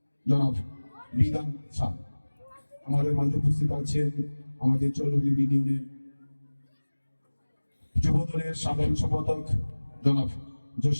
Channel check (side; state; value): both; inverted; correlation -1.00